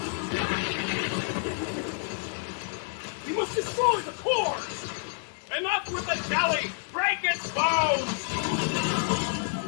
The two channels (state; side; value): silent; right; 59 dB below the other